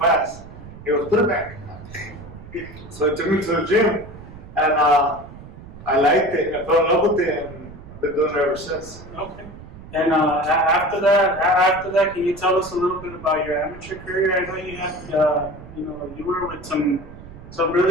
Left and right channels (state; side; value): noise; right; rumble, 16 dB below the sound